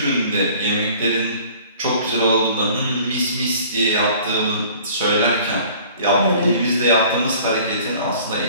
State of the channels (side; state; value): both; inverted; correlation -0.50